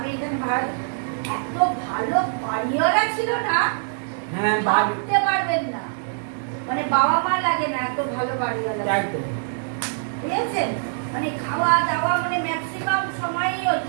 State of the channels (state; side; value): silent; left; digital silence